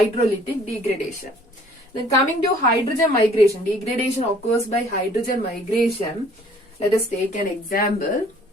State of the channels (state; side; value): normal; both; correlation 0.56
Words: degradation. Then coming to hydrogen migration, degradation occurs by hydrogen migration. Let us take an example.